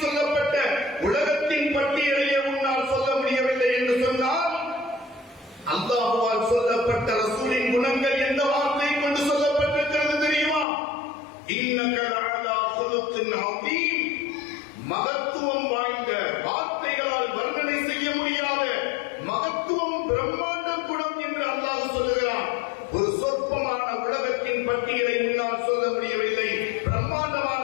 சொல்லப்பட்ட உலகத்தின் பட்டியலையே உன்னால் சொல்ல முடியவில்லை என்று சொன்னால், அல்லாஹ்வால் சொல்லப்பட்ட ரசூலின் குணங்கள் எந்த வார்த்தை கொண்டு சொல்லப்பட்டிருக்கிறது தெரியுமா? இன்னக லஅலா குலுகின் அதீம், மகத்துவம் வாய்ந்த, வார்த்தைகளால் வர்ணனை செய்ய முடியாத மகத்துவம், பிரம்மாண்ட குணம் என்று அல்லாஹ் சொல்லுகிறான். ஒரு சொற்பமான உலகத்தின் பட்டியலை உன்னால் சொல்ல முடியவில்லை, பிரம்மாண்டமான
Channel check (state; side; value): drops out; right; at 10.7 s